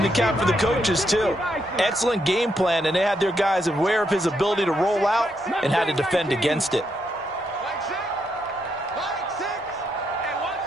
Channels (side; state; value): both; normal; correlation 0.79